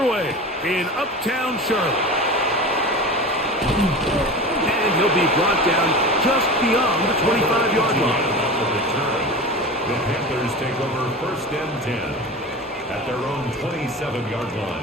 in Uptown Charlotte. And he'll be brought down just beyond the 25-yard line. The Panthers take over 1st and 10 at their own 27-yard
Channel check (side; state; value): both; normal; correlation 0.31